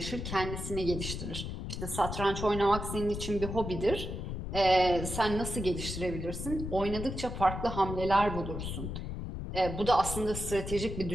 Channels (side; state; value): left; noise; rumble, 5 dB below the sound